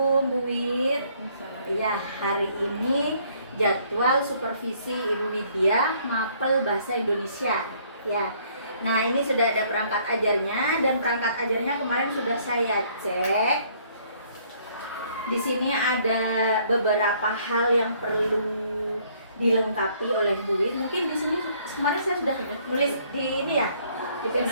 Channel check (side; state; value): both; inverted; correlation -0.63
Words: Bu Wid. Ya, hari ini jadwal supervisi Ibu Widya mapel bahasa Indonesia. Ya, nah ini sudah ada perangkat ajarnya dan perangkat ajarnya kemarin sudah saya cek. Di sini ada beberapa hal yang perlu dilengkapi oleh Bu Wid. Mungkin di sini kemarin saya sudah nulis di ini ya, di